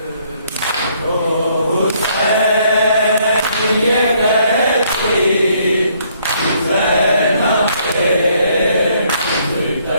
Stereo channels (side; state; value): both; inverted; correlation -0.67